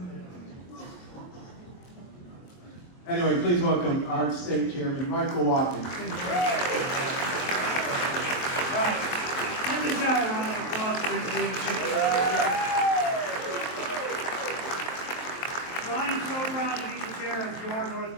anyway, please welcome our state chairman, Michael Whatley. Give this guy a round of applause for his leadership. So I am so proud to be the chair of your North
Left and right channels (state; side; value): late; right; 23 ms